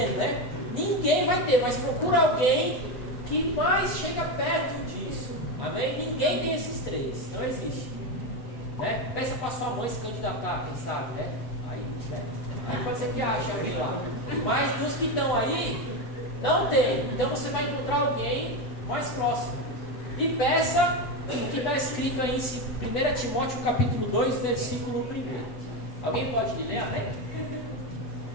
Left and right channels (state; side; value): late; right; 8.1 ms